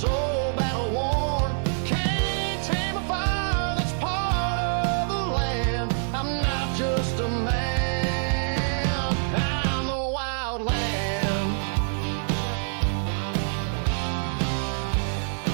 battle worn. Can't tame a fire that's part of the land. I'm not just a man, I'm the wildland.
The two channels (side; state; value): left; silent; digital silence